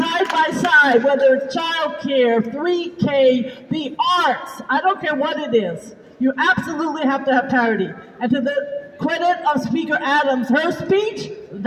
by side, whether it's childcare, 3K, the arts, I don't care what it is. You absolutely have to have parity. And to the credit of Speaker Adams, her speech,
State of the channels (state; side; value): identical; both; correlation 1.00